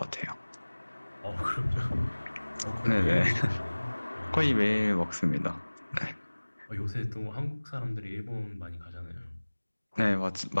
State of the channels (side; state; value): both; inverted; correlation -1.00